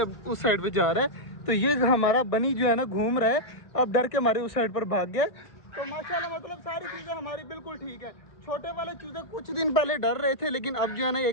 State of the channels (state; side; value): late; right; 1.7 ms